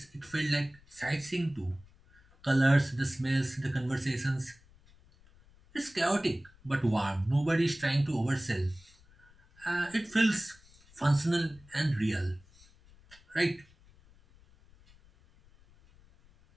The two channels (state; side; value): noise; left; rumble, 27 dB below the sound